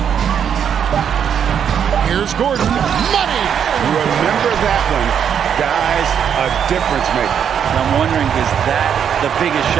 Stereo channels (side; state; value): left; quieter; 8.2 dB